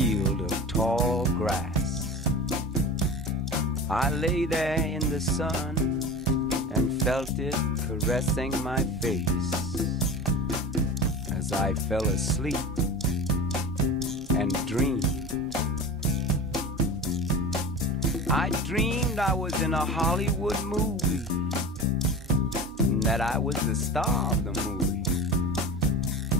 of tall grass. I lay there in the sun and felt it caressing my face as I fell asleep and dreamed. I dreamed I was in a Hollywood movie, and that I was the star of the movie.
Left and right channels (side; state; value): both; normal; correlation 0.32